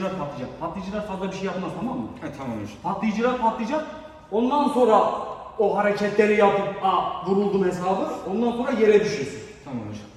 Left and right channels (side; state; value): both; identical; correlation 1.00